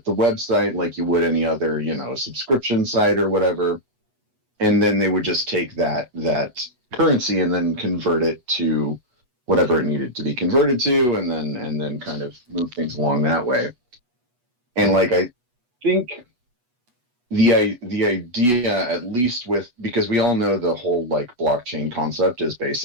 the website like you would any other subscription site or whatever, and then they would just take that currency and then convert it to whatever it needed to be converted to, and then kind of move things along that way. And like I think the idea, at least because we all know the whole like blockchain concept is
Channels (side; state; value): left; late; 8.2 ms